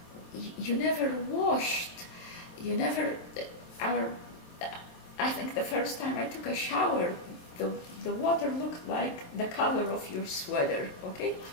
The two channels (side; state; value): right; late; 23 ms